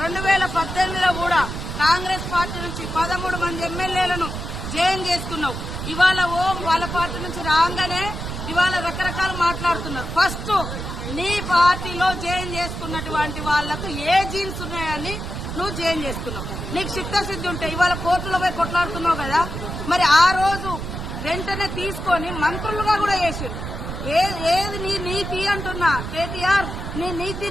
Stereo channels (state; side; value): noise; right; rumble, 6 dB below the sound